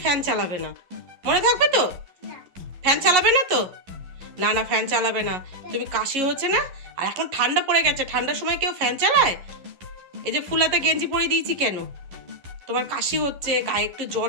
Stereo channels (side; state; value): left; late; 11 ms